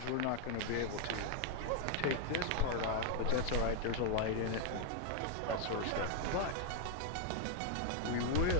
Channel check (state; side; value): different; both; correlation 0.00